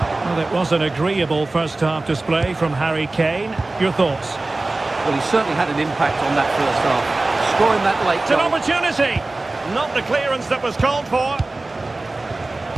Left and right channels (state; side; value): quieter; left; 3.1 dB